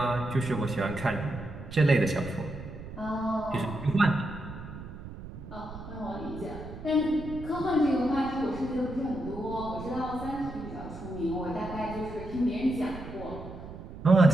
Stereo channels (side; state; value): right; noise; rumble, 12 dB below the sound